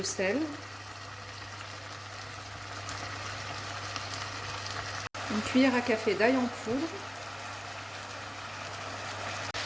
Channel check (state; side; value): identical; both; correlation 1.00